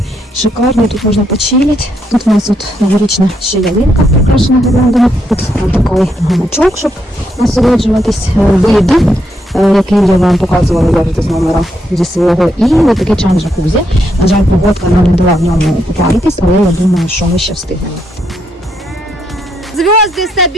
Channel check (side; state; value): both; normal; correlation 0.78